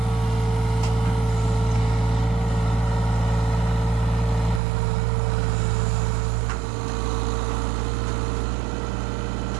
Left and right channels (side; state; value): left; drops out; at 4.6 s